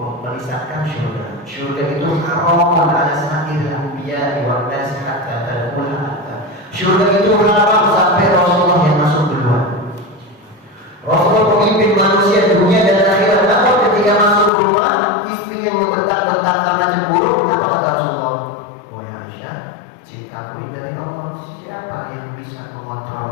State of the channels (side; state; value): right; drops out; at 14.5 s